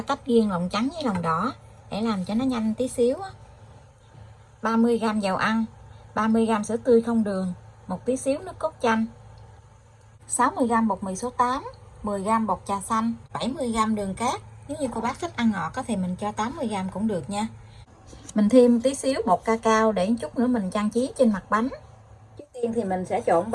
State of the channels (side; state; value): both; identical; correlation 1.00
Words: tách riêng lòng trắng với lòng đỏ để làm cho nó nhanh tí xíu. 30g dầu ăn, 30g sữa tươi không đường, một tí xíu nước cốt chanh, 60g bột mì số 8, 10g bột trà xanh, 70g đường cát. Nếu như cô bác thích ăn ngọt thì mình cho 80g cũng được nha. Mình thêm tí xíu bột cacao để chút nữa mình trang trí trên mặt bánh. Trước tiên thì mình sẽ trộn